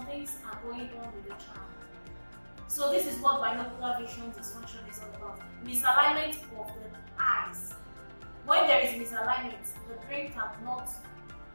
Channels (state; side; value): inverted; both; correlation -1.00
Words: things are going on with the child. So this is what binocular vision dysfunction is all about. Misalignment of the eyes. When there is misalignment, the brain cannot